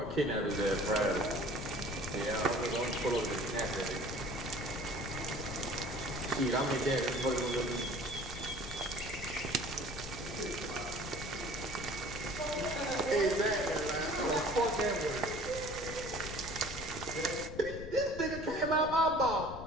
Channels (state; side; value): noise; left; rumble, 10 dB below the sound